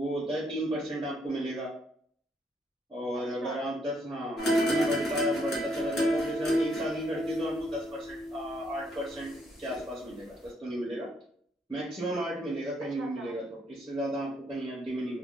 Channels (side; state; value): both; normal; correlation 0.72